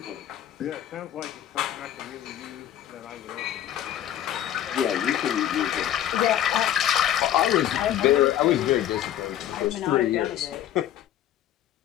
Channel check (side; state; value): right; quieter; 11.3 dB